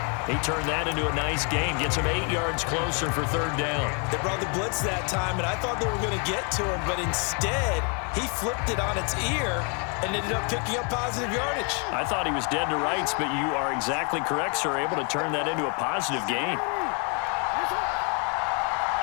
He turned that into a nice gain, gets him 8 yards closer for 3rd down. They brought the blitz that time, and I thought they were going to get to him, but instead, he flipped it on its ear and ended up picking up positive yardage. I thought he was dead to rights, but you are exactly correct, sir, able to turn that into a positive gain.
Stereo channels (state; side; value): quieter; right; 36.7 dB